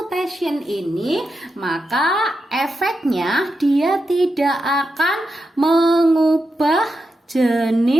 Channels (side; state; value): both; normal; correlation 0.87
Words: ini maka efeknya dia tidak akan mengubah